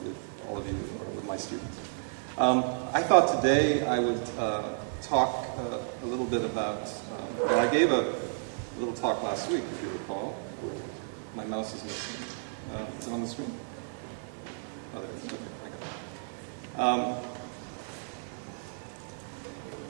all of you, or with my students. I thought today I would talk a little bit about, I gave a little talk last week, if you recall. My mouse is missing. Is it on the screen? Oh, there it is. Okay, I got it.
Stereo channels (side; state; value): left; silent; digital silence